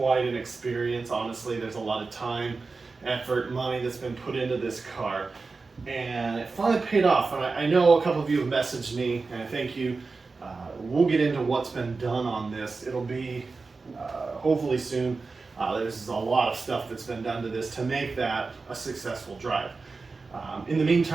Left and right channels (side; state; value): left; quieter; 4.1 dB